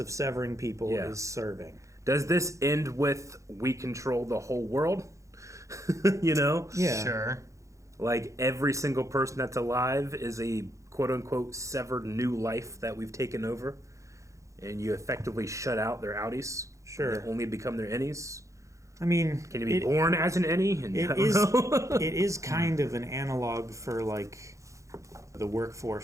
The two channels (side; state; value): left; late; 0.15 ms